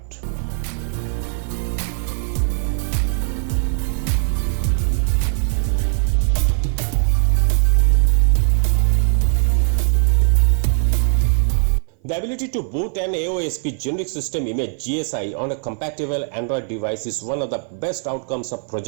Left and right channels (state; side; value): silent; left; 58 dB below the other